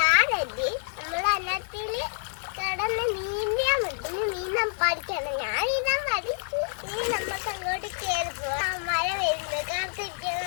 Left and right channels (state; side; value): silent; right; 60 dB below the other